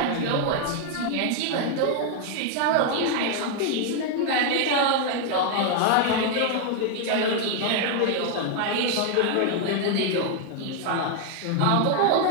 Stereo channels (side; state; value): both; different; correlation 0.00